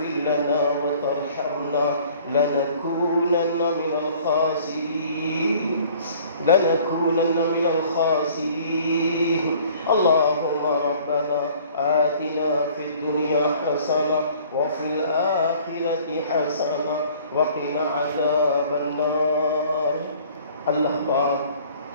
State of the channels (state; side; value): inverted; both; correlation -0.53